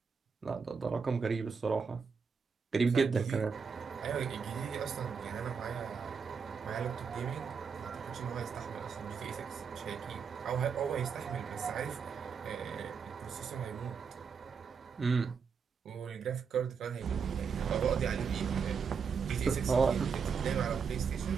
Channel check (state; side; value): quieter; left; 5.9 dB